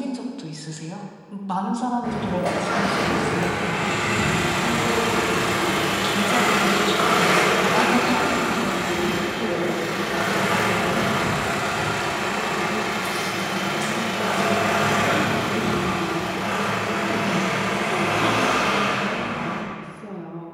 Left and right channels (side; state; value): both; identical; correlation 1.00